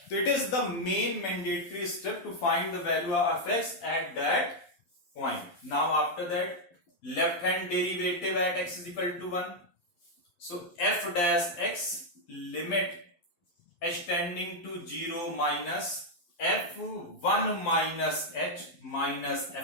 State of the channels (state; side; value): late; right; 11 ms